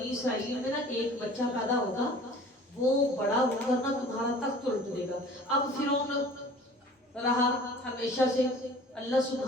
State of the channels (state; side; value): normal; both; correlation 0.46